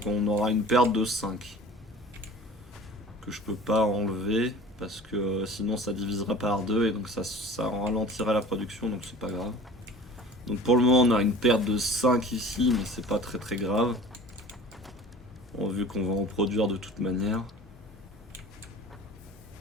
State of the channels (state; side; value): normal; both; correlation 0.44